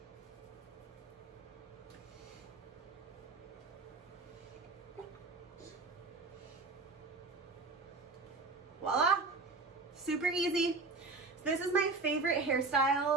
Voila, super easy. This is my favorite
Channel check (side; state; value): left; quieter; 3.8 dB